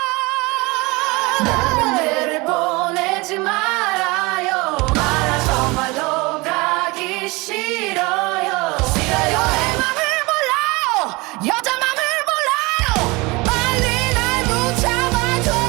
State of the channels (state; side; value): quieter; left; 24.5 dB